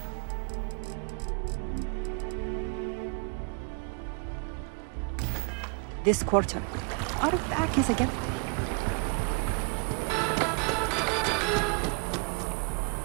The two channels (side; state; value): left; quieter; 37.2 dB